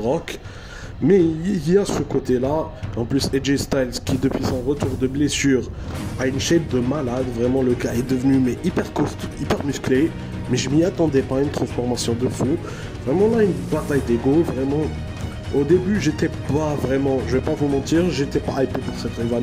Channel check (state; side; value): identical; both; correlation 1.00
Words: mais il y a ce côté-là. En plus, AJ Styles qui depuis son retour de blessure a une shape de malade. Vraiment, le gars est devenu hyper costaud, hyper musclé. Mais je m'y attendais pas, une transformation de fou. Vraiment là, une bataille d'ego. Vraiment, au début, j'étais pas vraiment, je vais pas vous mentir, j'étais pas hypé pour cette